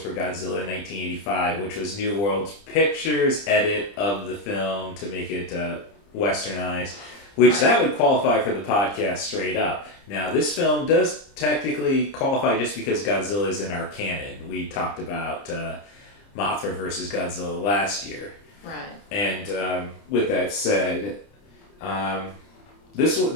Godzilla 1985, which was New World Pictures' edit of the film to make it westernized, which that would qualify for the podcast straight up. Now, this film does technically qualify just because Godzilla is in our canon. We talked about Mothra versus Godzilla last year. Right. And with that said, this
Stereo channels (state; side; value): late; right; 30 ms